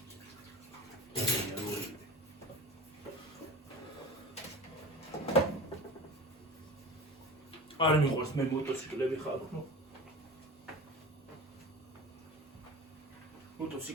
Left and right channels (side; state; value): both; normal; correlation 0.34